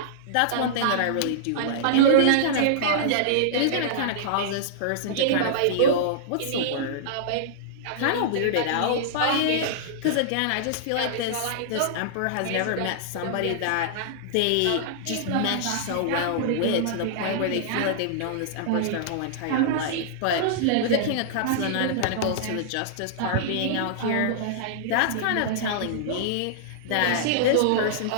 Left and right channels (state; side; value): different; both; correlation -0.02